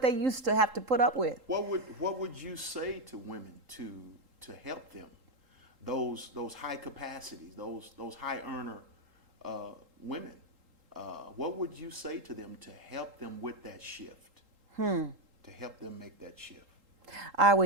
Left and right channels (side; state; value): left; late; 3.8 ms